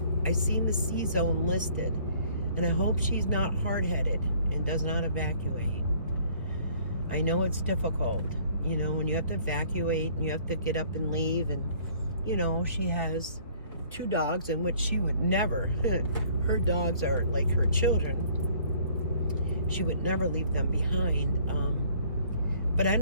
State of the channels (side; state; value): both; inverted; correlation -0.58